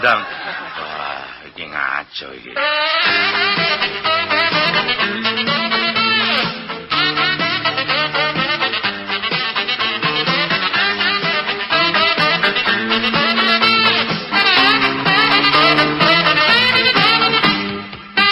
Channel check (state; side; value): identical; both; correlation 1.00